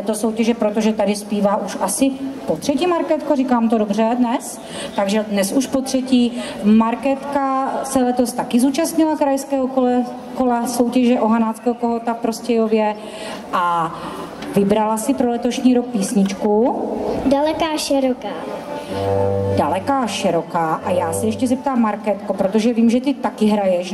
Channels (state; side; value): identical; both; correlation 1.00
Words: soutěže, protože tady zpívá už asi po třetí. Markétko, říkám to dobře dnes, takže dnes už po třetí. Markétka se letos taky zúčastnila krajského kola soutěže o hanáckého kohouta v Prostějově a vybrala si pro letošní rok písničku Daleká široká. Daleká široká. A já se ještě zeptám, Markétko, protože vím, že ty taky hraješ